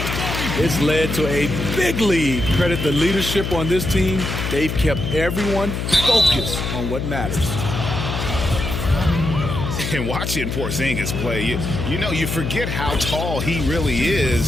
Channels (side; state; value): left; noise; hum, 3 dB below the sound